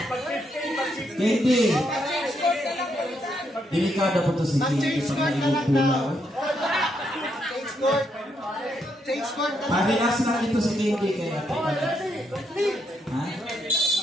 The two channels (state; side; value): normal; both; correlation 0.77